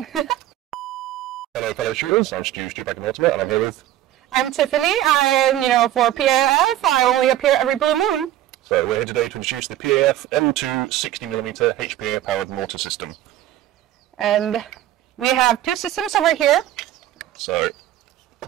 Hello, fellow shooters. I'm Stu back in Mortar, and I'm here with... I'm Tiffany. For PAF, I only appear every blue moon. So we're here today to introduce the PAF M2 60mm HPA-powered mortar system. And we have two systems over here. So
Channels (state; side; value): quieter; left; 13.1 dB